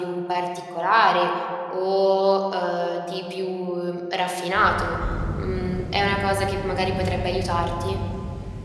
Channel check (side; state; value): both; identical; correlation 1.00